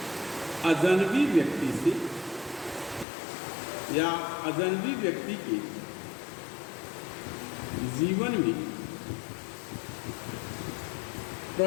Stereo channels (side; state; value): right; drops out; at 3.1 s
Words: अजनबी व्यक्ति से या अजनबी व्यक्ति के जीवन में